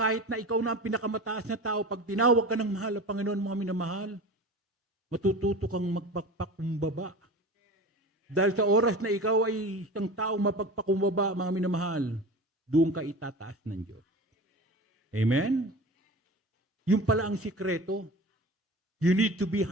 na ikaw na ang pinakamataas na tao, pag tinawag ka ng mahal na Panginoon, mga minamahal, matututo kang magpagpakumbaba. Dahil sa oras na ikaw ay isang taong mapagpakumbaba, mga minamahal, doon ka itataas ng Diyos. Amen? Yung pala ang sikreto. You need to be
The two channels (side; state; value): both; normal; correlation 0.34